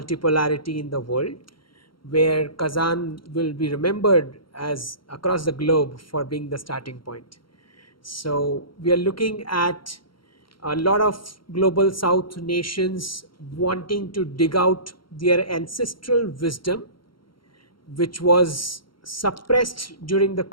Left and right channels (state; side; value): late; right; 0.73 ms